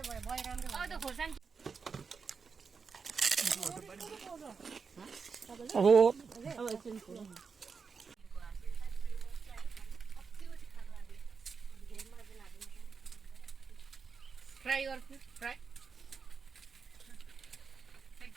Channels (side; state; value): left; quieter; 5.4 dB